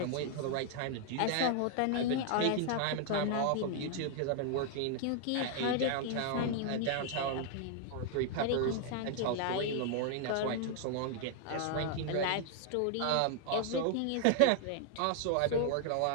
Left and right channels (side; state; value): both; different; correlation 0.00